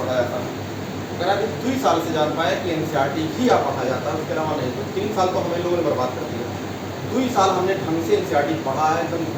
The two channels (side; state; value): both; identical; correlation 1.00